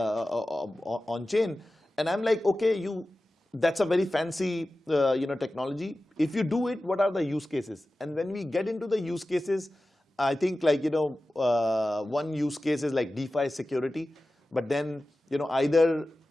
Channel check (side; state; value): both; normal; correlation 0.95